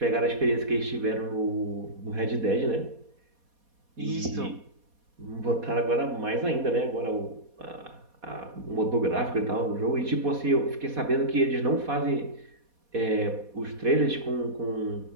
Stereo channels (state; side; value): late; left; 4.2 ms